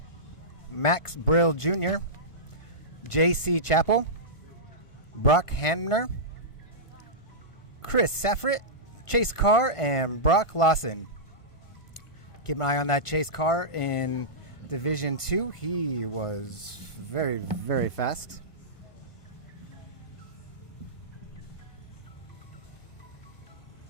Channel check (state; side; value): late; right; 1.5 ms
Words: Max Brill Jr., J.C. Chappell, Brock Hamner, Chris Safrit, Chase Carr, and Brock Lawson. Keep an eye on that Chase Carr in Division 2. He was very, very fast.